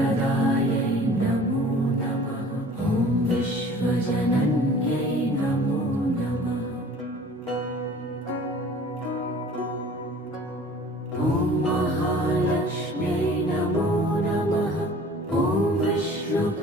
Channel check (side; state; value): both; normal; correlation 0.47